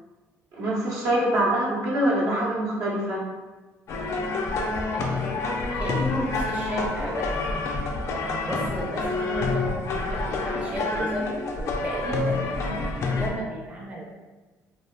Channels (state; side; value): normal; both; correlation 0.59